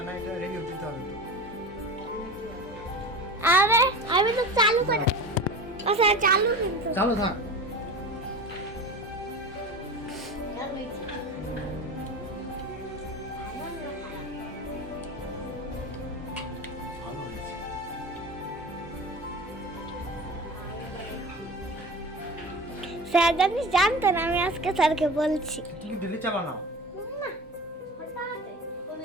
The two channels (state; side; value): normal; both; correlation 0.32